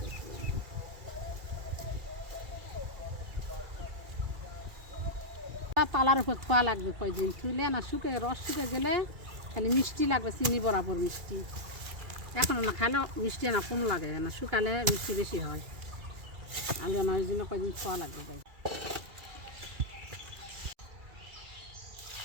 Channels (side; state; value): left; late; 2.3 ms